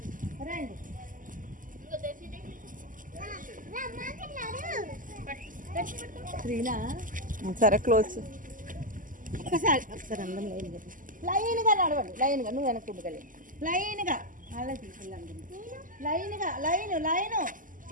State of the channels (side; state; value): left; late; 0.38 ms